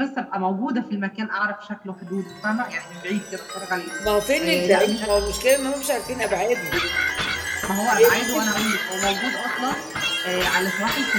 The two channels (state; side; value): identical; both; correlation 1.00